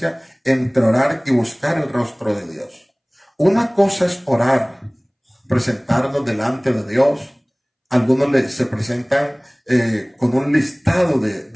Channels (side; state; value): both; identical; correlation 1.00